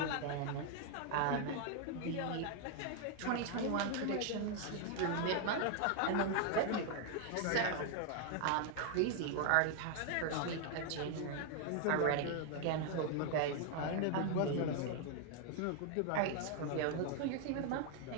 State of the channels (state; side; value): different; both; correlation 0.00